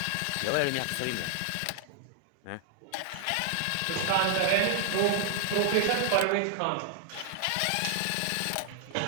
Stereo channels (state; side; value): different; both; correlation -0.01